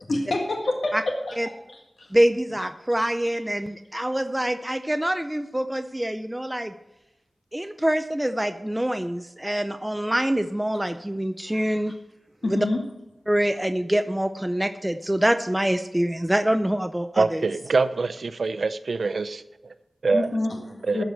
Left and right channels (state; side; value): normal; both; correlation 0.98